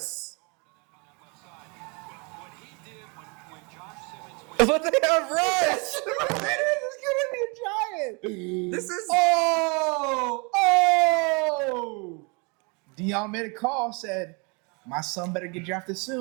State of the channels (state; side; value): quieter; left; 31.8 dB